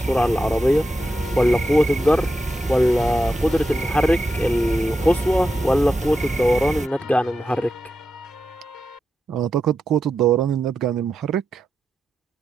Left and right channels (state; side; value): normal; both; correlation 0.88